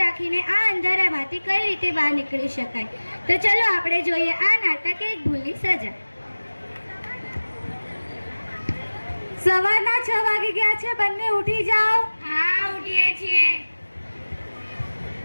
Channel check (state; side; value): inverted; both; correlation -1.00